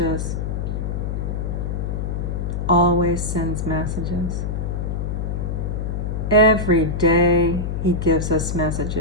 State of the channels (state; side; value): noise; left; hum, 2 dB below the sound